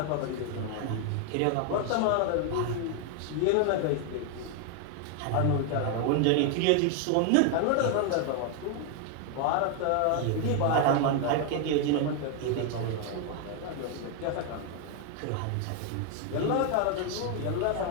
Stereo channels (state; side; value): different; both; correlation 0.01